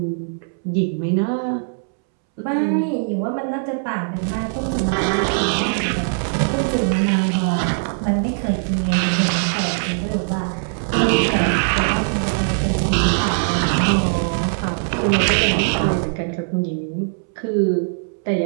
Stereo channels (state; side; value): silent; left; 65 dB below the other